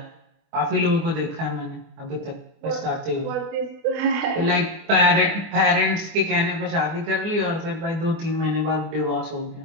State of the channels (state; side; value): late; left; 24 ms